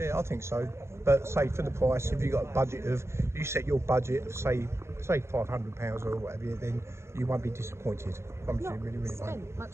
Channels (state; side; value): late; left; 0.13 ms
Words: I think so. But say for the price, if you got a budget of, you set your budget of say £500 or whatever, then you won't be disappointed. Not really spent